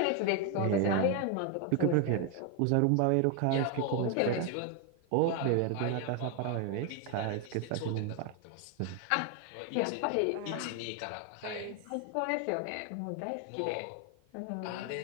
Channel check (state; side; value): different; both; correlation 0.01